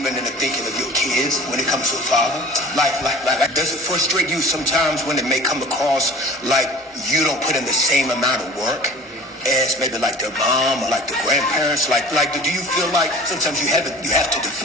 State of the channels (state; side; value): normal; both; correlation 0.44